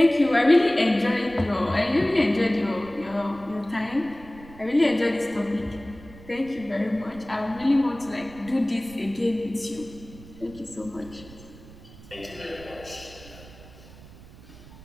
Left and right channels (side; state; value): right; noise; rumble, 19 dB below the sound